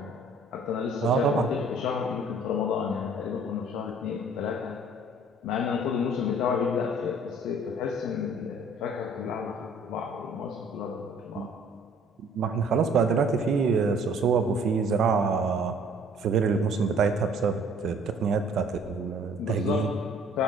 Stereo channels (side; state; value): both; normal; correlation 0.55